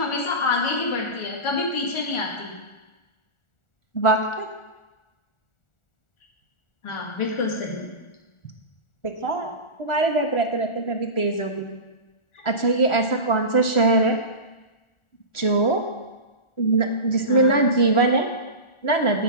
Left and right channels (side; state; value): right; late; 1.4 ms